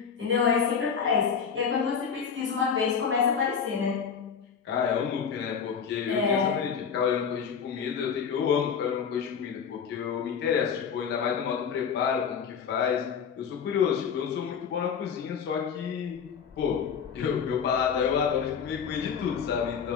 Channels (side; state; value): right; quieter; 6.9 dB